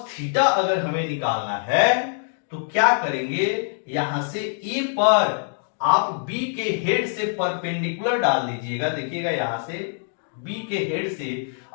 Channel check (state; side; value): silent; right; 63 dB below the other